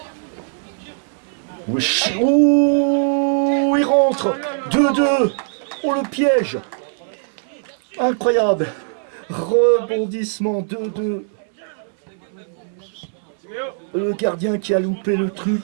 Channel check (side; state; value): left; silent; 65 dB below the other